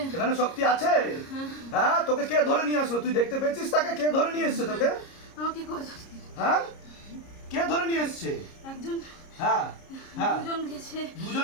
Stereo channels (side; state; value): right; late; 30 ms